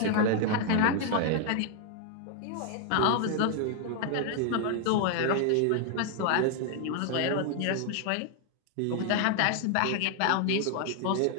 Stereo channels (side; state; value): both; different; correlation 0.00